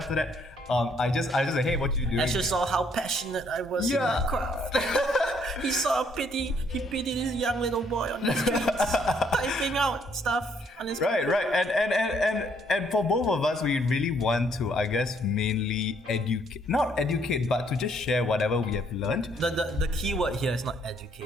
that, I just like, hey, what you doing? I just saw how passionate I was in my craft. He pitied this young little boy on the streets, typing out stuff on his right, and for both of us, we really want to, I guess, mainly not educate, but to just share whatever we have learned. The key word here is not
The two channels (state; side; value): normal; both; correlation 0.67